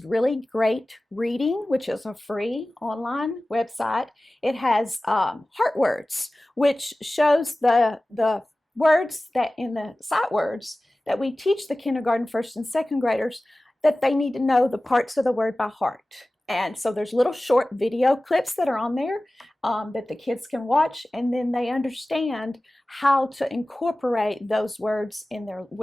Really Great Reading, which is a free online website. It has Heart Words, which shows the words that in the sight words that we teach the kindergarten, first and second graders, that they need to know the parts of the word by heart. And so there's little short video clips that are on there that the kids can watch, and then they understand how to incorporate those words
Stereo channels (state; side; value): normal; both; correlation 0.97